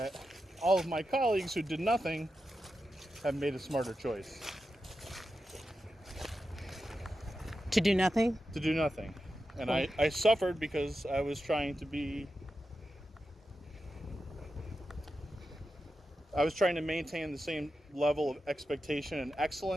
all of my colleagues who did nothing have made a smarter choice. To do nothing? To do nothing. And I suffered because I was trying to maintain the same level of expectation and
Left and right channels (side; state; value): both; normal; correlation 0.90